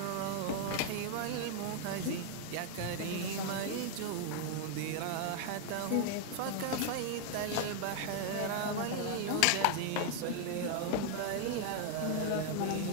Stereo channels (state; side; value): different; both; correlation 0.00